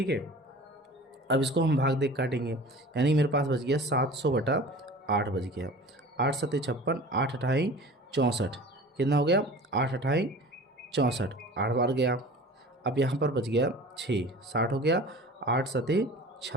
है। अब इसको हम भाग देख काटेंगे, यानी मेरे पास बच गया 700 बटा 8 बच गया। 8 7 56, 8 8 64, कितना हो गया? 8 8 64, 8 बार गया। अब यहाँ पर बच गया 6, 60 हो गया। 8 7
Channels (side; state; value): both; normal; correlation 0.41